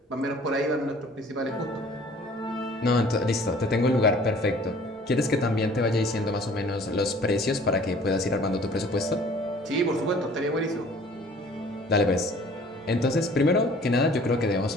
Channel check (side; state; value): both; normal; correlation 0.51